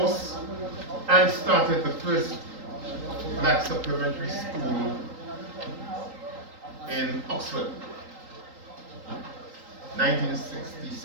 and started the first black supplementary school in Oxford,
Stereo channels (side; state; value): left; late; 3.8 ms